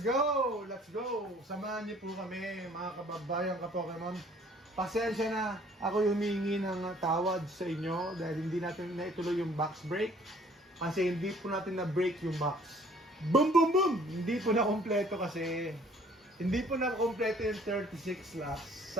go! Let's go! Samahan niyo po kami, mga kababayan ka Pokemon. Pasensya na, ako humingi ng tawad sa inyo dahil hindi natin naituloy yung box break. Kasi hindi po natin na-break yung box. Boom, boom, boom! Hindi po na kompleto kasi. Hindi po na kompleto yung 36 slots.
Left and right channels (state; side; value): normal; both; correlation 0.57